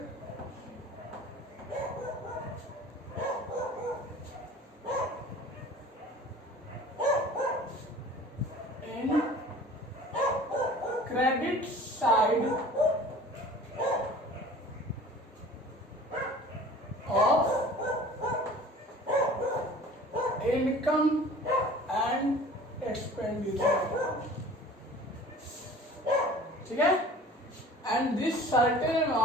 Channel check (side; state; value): both; normal; correlation 0.45